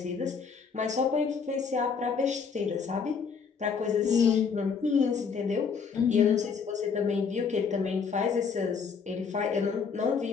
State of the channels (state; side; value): quieter; right; 5.9 dB